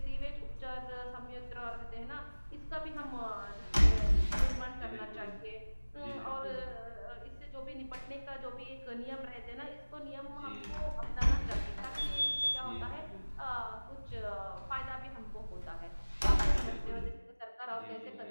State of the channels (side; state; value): both; inverted; correlation -1.00